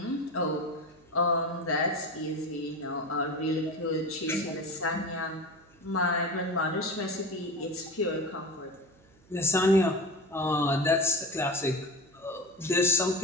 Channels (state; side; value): noise; right; hum, 29 dB below the sound